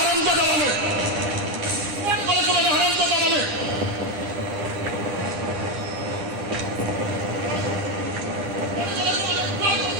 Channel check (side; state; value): left; late; 9.9 ms